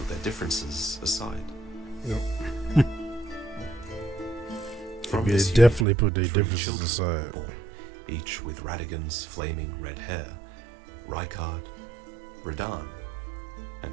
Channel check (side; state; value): left; drops out; at 5.9 s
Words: their differences aside. Yep. From They this definitely put their 3 differences children aside. were born, each with Radigan's flaming red hair, Rykard, Radahn,